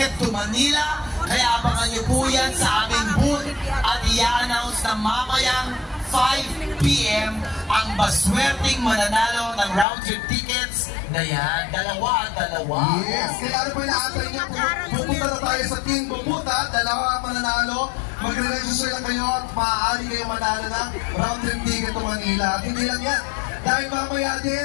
to Manila. Kaya abangan niyo po yan sa aming booth at i-announce na mamayang 5 p.m. ang baswerteng mananalo ng round trip tickets na yan. Dalawa. Yes, kaya ano po inaantay niyo? Pupunta na tayo sa Team Bubuta, dalawa mananalo. Magre-register lang kayo at maaari kayo manalo ng round trip ticket to Manila. At hindi lang yan, dahil mamaya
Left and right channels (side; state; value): right; drops out; at 9.9 s